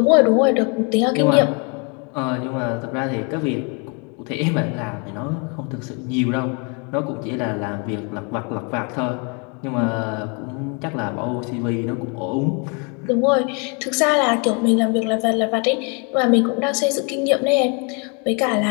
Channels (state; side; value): quieter; right; 34.4 dB